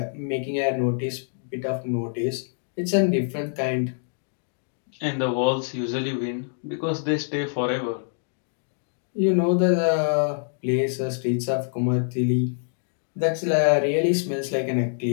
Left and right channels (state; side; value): silent; right; digital silence